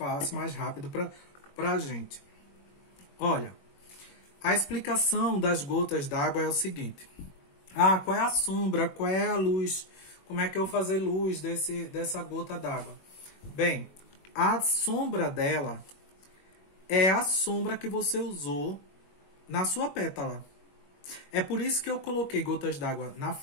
mais rápido pra gente. Olha, a explicação das gotas d'água é o seguinte. Ah, qual é a sombra? Qual é a luz? Como é que eu vou fazer luz dessa gota d'água? Bem, a sombra dela é a sombra que você usou na sua pétala. É por isso que eu coloquei gotas d'água na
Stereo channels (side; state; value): right; late; 21 ms